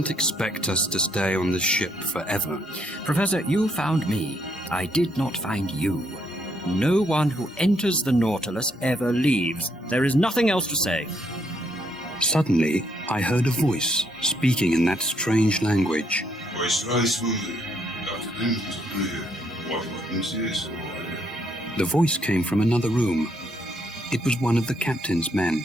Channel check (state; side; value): normal; both; correlation 0.73